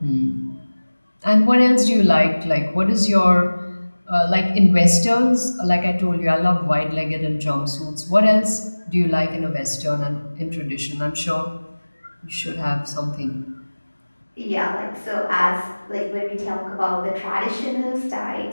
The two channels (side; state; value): both; inverted; correlation -1.00